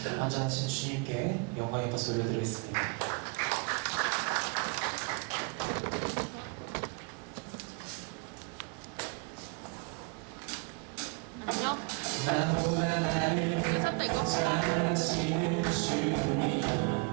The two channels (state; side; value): quieter; left; 33.1 dB